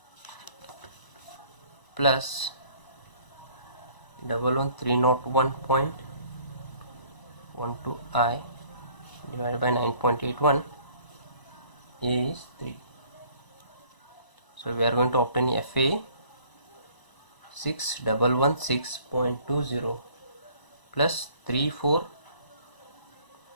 plus 11301.12i divided by 9.81 is 3. So we are going to obtain FA 6116.20 plus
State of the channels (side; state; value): right; late; 1.0 ms